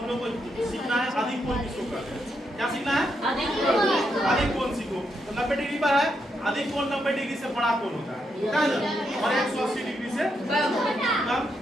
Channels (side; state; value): both; normal; correlation 0.81